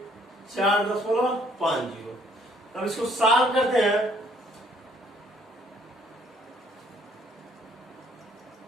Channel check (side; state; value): both; normal; correlation 0.63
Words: 4.50। अब इसको सॉल्व करते हैं।